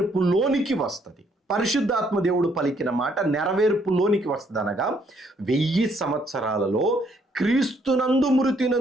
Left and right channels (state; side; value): normal; both; correlation 0.69